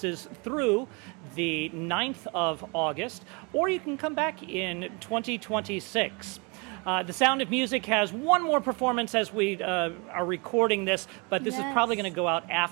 through the 9th of August, or you can come back in 2026. The Sound of Music has one more performance as we are recording this, but this is probably going to go out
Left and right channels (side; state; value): left; quieter; 30.7 dB